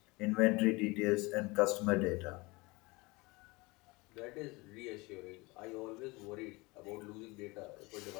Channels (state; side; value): quieter; right; 24.5 dB